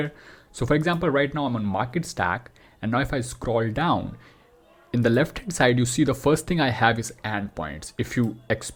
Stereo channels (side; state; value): both; identical; correlation 1.00